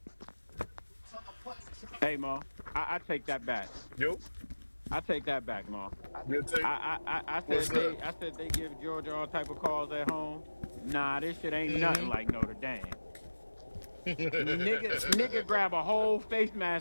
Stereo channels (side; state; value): both; inverted; correlation -1.00